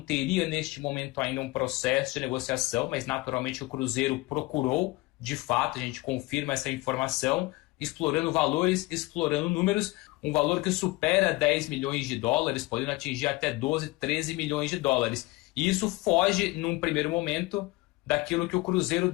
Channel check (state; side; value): quieter; right; 21.6 dB